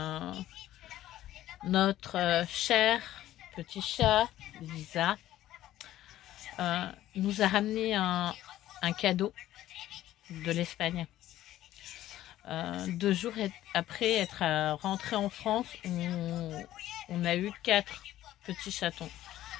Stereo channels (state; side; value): quieter; right; 13.7 dB